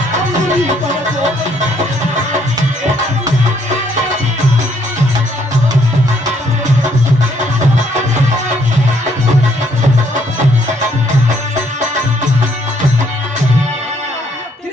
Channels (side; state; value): both; normal; correlation 0.68